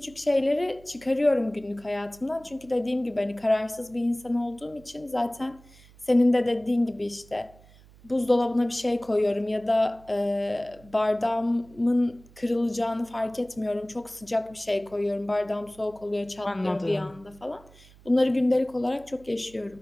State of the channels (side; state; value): right; noise; hum, 25 dB below the sound